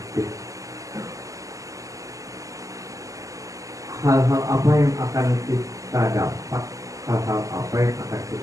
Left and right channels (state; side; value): late; left; 0.16 ms